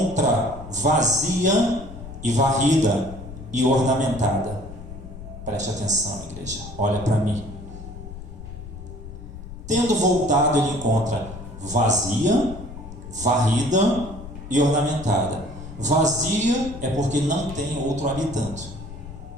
vazia e varrida e ornamentada. Preste atenção, igreja, olha para mim. Tendo voltado, ele encontra vazia, varrida e ornamentada. Vazia é porque não tem outro habitante.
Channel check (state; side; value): noise; left; rumble, 13 dB below the sound